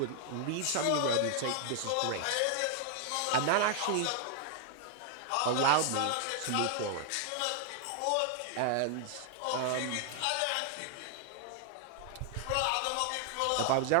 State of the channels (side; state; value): both; different; correlation 0.00